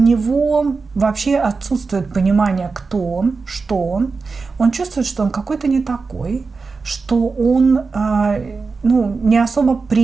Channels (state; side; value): quieter; left; 4.4 dB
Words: вообще отсутствует понимание, кто он, что он. Он чувствует, что он какой-то не такой, что он не особо